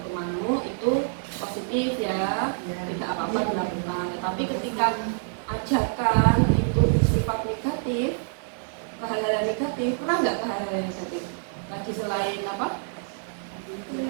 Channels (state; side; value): silent; left; digital silence